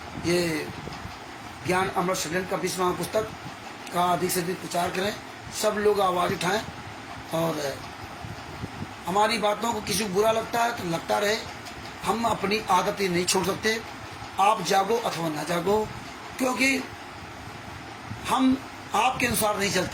ये ज्ञान अमृत सदन का 20वां पुस्तक का अधिक से अधिक प्रचार करें, सब लोग आवाज़ उठाएं, और हमारी बातों को किसी को बुरा लगता है तो लगता रहे, हम अपनी आदतें नहीं छोड़ सकते। आप जागो अथवा ना जागो, क्योंकि हम आपके अनुसार नहीं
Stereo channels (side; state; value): both; identical; correlation 1.00